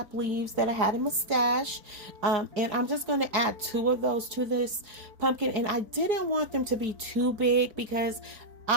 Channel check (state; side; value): late; left; 4.8 ms